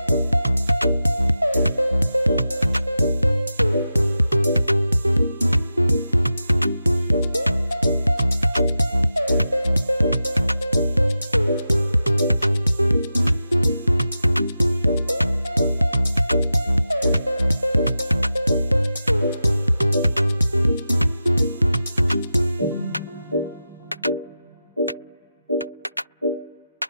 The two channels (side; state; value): both; inverted; correlation -0.91